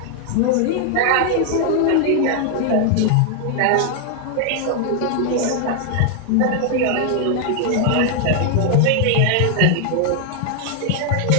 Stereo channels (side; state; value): both; different; correlation 0.00